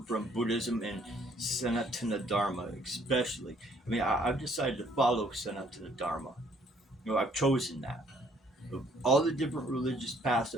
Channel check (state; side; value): normal; both; correlation 0.63